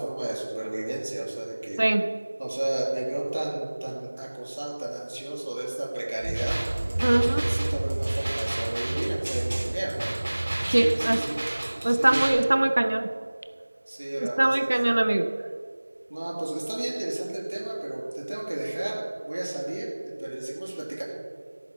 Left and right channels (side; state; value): both; inverted; correlation -1.00